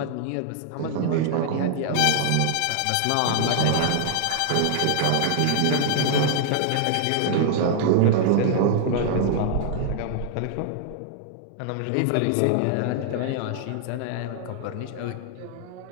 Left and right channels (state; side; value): different; both; correlation -0.01